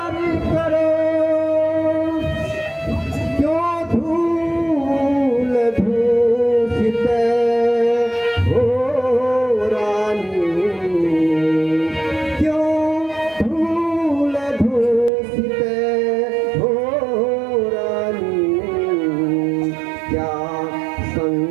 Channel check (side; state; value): left; drops out; at 15.1 s